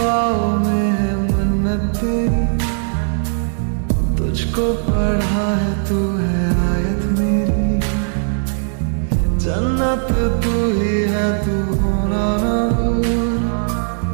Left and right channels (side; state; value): left; silent; digital silence